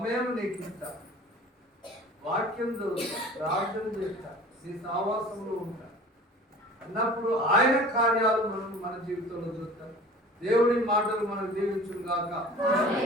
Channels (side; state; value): both; normal; correlation 0.43